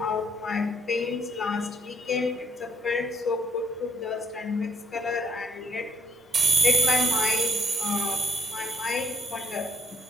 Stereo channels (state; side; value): normal; both; correlation 0.70